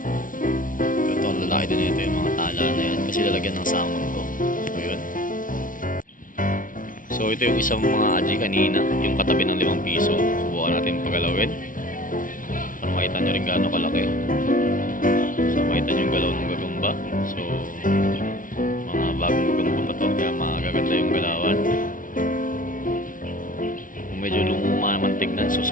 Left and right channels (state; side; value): late; right; 0.39 ms